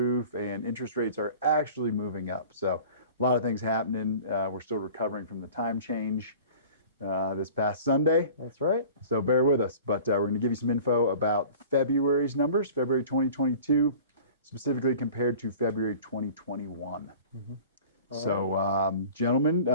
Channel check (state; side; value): inverted; both; correlation -0.44